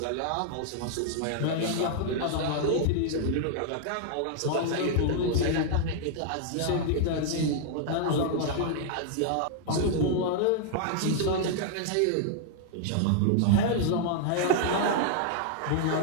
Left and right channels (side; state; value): both; different; correlation -0.01